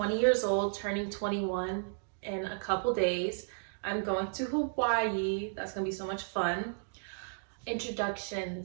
years old, turning 21 in a couple days. I'm going to Hawaii. That's gonna be so much fun.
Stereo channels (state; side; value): silent; left; digital silence